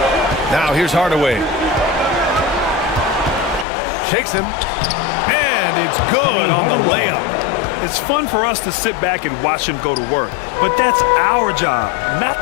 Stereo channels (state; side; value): drops out; right; at 3.7 s